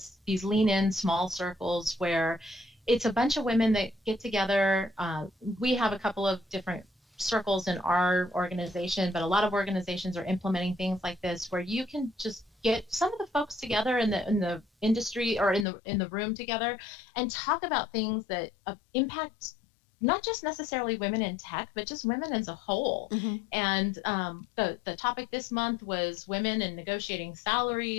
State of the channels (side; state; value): right; drops out; at 15.7 s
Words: these lean in small circles where it's a bunch of women that get together. We have a couple of different circles in our organization, but a lot of organizations are implementing things like this, where you can just get some of the folks together in the industry or in the room together and talk about things that impact not just necessarily women in tech, but just women as a whole. And the topic this month was women and negotiating